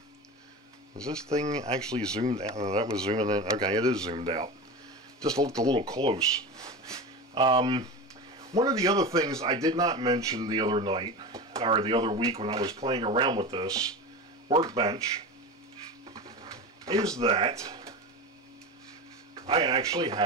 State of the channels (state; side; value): normal; both; correlation 0.26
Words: Is this thing actually zoomed out? Oh, that was zooming in. Okay, it is zoomed out. Just looked a little close. One of the other things I did not mention the other night, or the other week when I was playing around with this Workbench, is that I actually